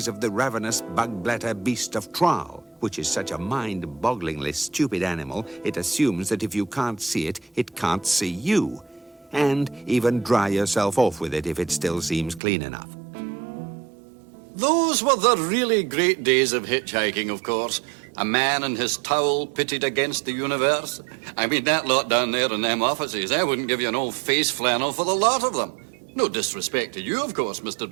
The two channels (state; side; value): drops out; left; at 12.4 s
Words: of the ravenous bug-bladder beast of Traal, which is such a mind-bogglingly stupid animal, it assumes that if you can't see it, it can't see you. And even dry yourself off with it if it still seems clean enough. Those were the really great days of hitchhiking, of course. A man and his towel pitted against the universe. I mean, that lot down there in them offices, I wouldn't give you an old face flannel for the lot of them. No disrespect to you, of course, Mr.